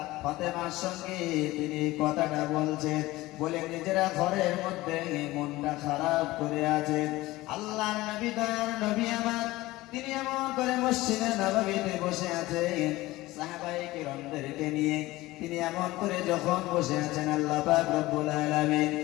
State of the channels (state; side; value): quieter; right; 18.6 dB